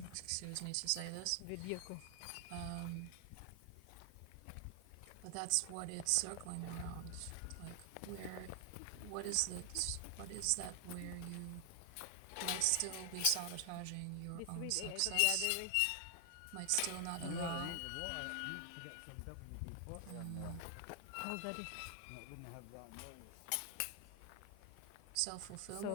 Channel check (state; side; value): different; both; correlation 0.00